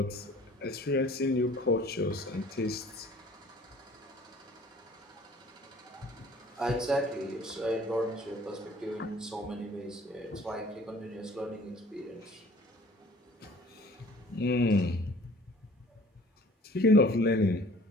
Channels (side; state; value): both; normal; correlation 0.51